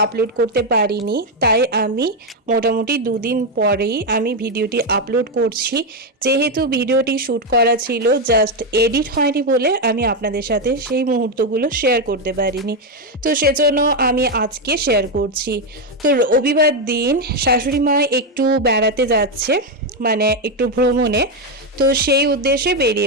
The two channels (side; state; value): both; normal; correlation 0.05